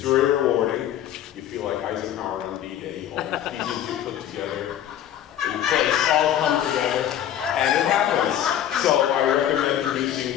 very rewarding. You feel like Eisenhower on D-Day. All the pieces you put together in place all come together, and it happens. So I recommend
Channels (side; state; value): right; quieter; 10.9 dB